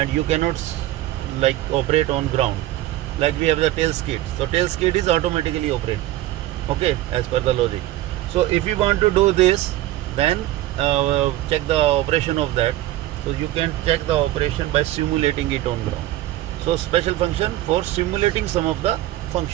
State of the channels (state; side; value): quieter; left; 15.1 dB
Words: you cannot like operate on ground. Like we have the tail skid. So tail skid is automatically operated, okay, as per the logic. So if you want to do this, then check the operation of that. So you can check the operation by simulating it on ground. So special function for simulating some of the